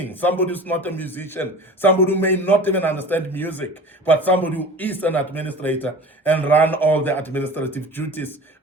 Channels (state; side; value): normal; both; correlation 0.39